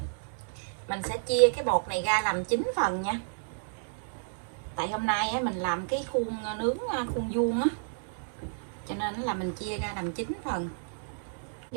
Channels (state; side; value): silent; left; digital silence